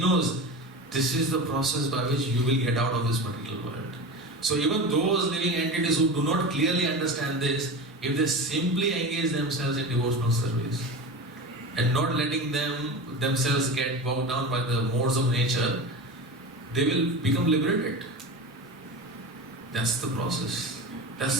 this is the process by which you will get out of this material world. So even those living entities who do not clearly understand this, if they simply engage themselves in devotional service and not letting themselves get bogged down by the modes of nature, they will become liberated. That's the process. That's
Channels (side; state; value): both; normal; correlation 0.28